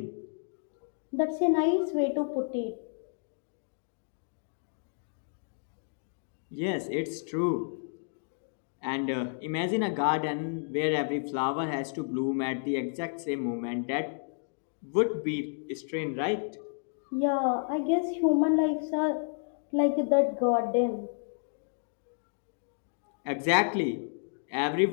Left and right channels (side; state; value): right; silent; digital silence